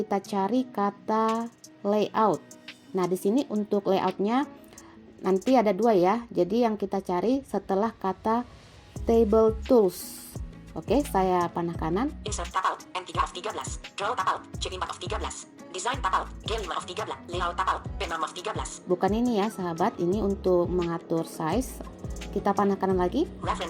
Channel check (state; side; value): identical; both; correlation 1.00